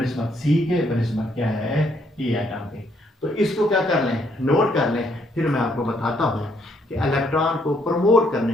सी के, बनिस्बत क्या है ई एटम के। तो इसको क्या कर लें नोट कर लें, फिर मैं आपको बताता हूं कि इलेक्ट्रॉन को प्रमोट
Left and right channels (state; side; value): normal; both; correlation 0.70